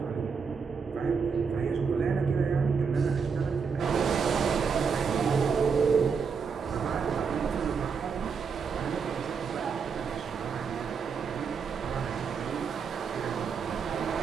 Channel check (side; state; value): left; quieter; 5.8 dB